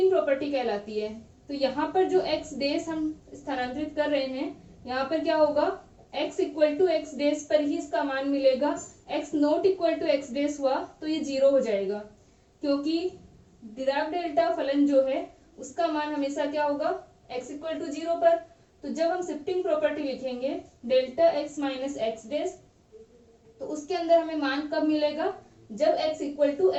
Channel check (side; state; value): both; identical; correlation 1.00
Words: प्रॉपर्टी कहलाती है। तो यहाँ पर जो x डेस हम स्थानांतरित कर रहे हैं, यहाँ पर क्या होगा, x equal to x dash पर ही इसका मान मिलेगा। x not equal to x dash हुआ तो ये 0 हो जाएगा, क्योंकि डिराक डेल्टा फलन जो है उसका मान हमेशा क्या होगा, x इक्वल टू 0 पर। तो जब हम शिफ्टिंग प्रॉपर्टी लिखेंगे delta x minus x dash, तो उसके अंदर हमें मान कब मिलेगा, जब x equal to